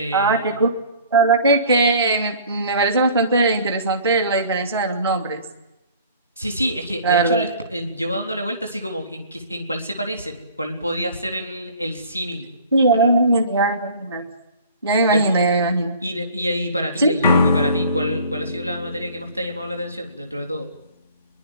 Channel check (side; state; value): both; inverted; correlation -0.49